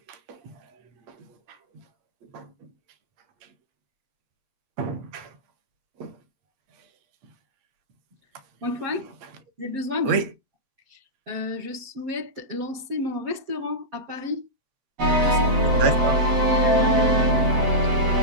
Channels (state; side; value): late; left; 7.9 ms